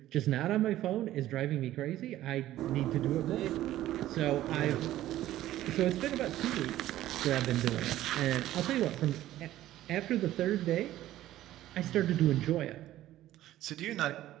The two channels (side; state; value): left; quieter; 14.1 dB